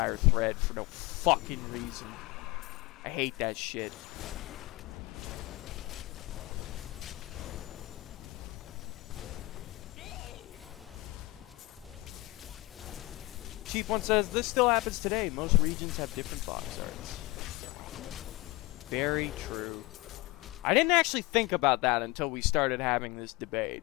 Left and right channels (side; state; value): right; quieter; 22.0 dB